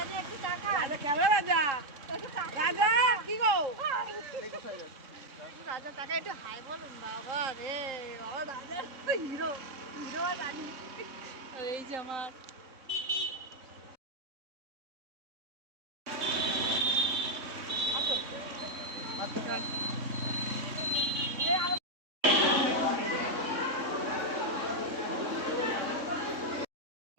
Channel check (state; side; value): late; left; 3.6 ms